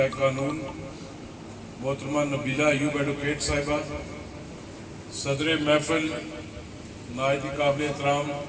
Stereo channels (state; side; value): identical; both; correlation 1.00